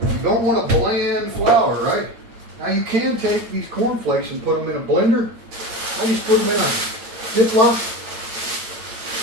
You don't want a bland flour, right? Now you can take these cornflakes and put them in a blender. I just put them in a Ziploc.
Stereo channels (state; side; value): late; left; 8.9 ms